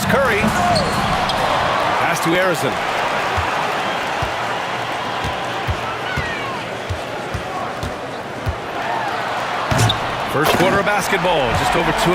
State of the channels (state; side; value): identical; both; correlation 1.00